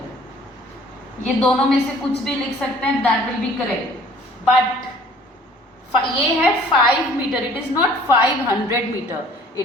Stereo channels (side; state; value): both; normal; correlation 0.53